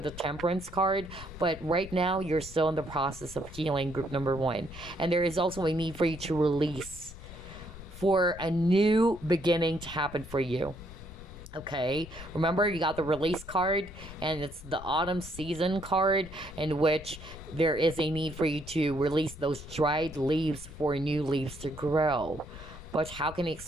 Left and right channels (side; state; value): left; noise; rumble, 15 dB below the sound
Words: the Temperance card, but right now you're still in the process of healing, group number one. And there is also a need for you to release, for a new beginning to happen for you. Okay, remember you got the release card, and it's the autumn season card, in which there is a need for you to release those dried leaves for new leaves to grow. But how can you